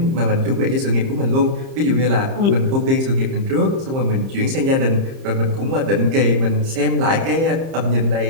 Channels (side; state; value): left; late; 30 ms